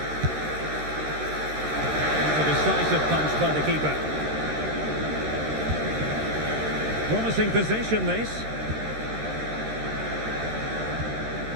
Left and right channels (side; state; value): left; late; 13 ms